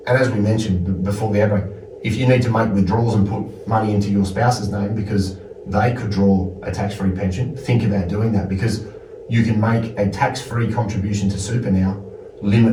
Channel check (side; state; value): both; identical; correlation 1.00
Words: as we mentioned before the outbreak, if you need to make withdrawals and put money into your spouse's name because they could draw a tax-free pension, think about doing that, because you can make a tax-free contribution to super now,